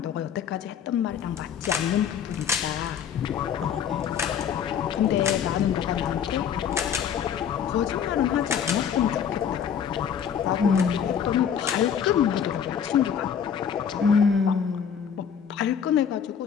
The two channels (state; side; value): quieter; right; 7.9 dB